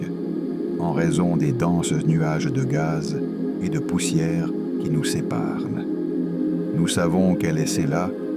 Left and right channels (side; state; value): both; identical; correlation 1.00